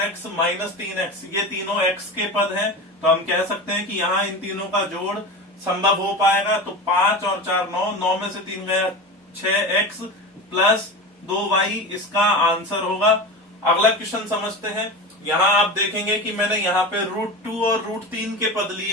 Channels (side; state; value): both; normal; correlation 0.27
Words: minus 3x ये तीनों x के पद हैं। तो हम कह सकते हैं कि यहाँ इन तीनों का जोड़ संभव हो पाएगा। तो 5 और 4 9, 9 में से 3 गया 6x प्लस 2y इसका आंसर होगा। अगला क्वेश्चन समझते हैं। यहाँ आप देखेंगे कि मैंने यहाँ पे √2 और √3 के पद